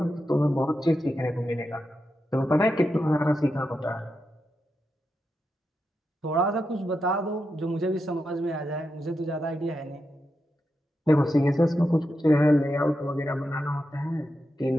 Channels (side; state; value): both; normal; correlation 0.87